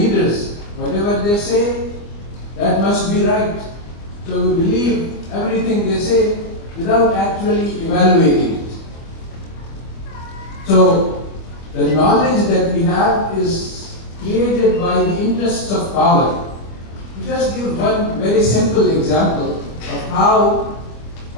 Whatever they say, that must be right. So we believe everything they say without actually evaluating it. So the knowledge that we have is created by the interests of power. To just give one very simple example of how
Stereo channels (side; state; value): right; late; 24 ms